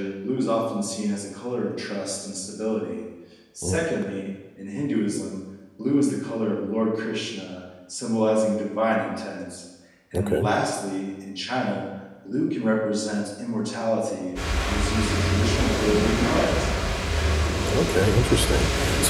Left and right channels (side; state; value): both; identical; correlation 1.00